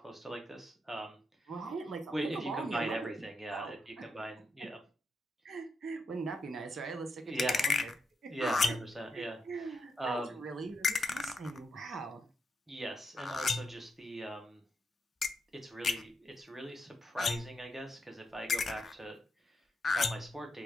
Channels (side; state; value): both; normal; correlation 0.82